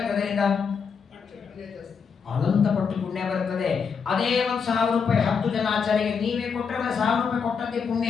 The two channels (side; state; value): right; quieter; 6.1 dB